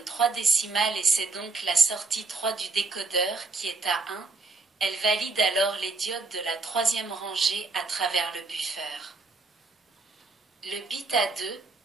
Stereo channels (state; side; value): quieter; left; 3.9 dB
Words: 3 décimales et c'est donc la sortie 3 du décodeur qui est à 1. Elle valide alors les diodes de la 3e rangée à travers le buffer. Le bit à 2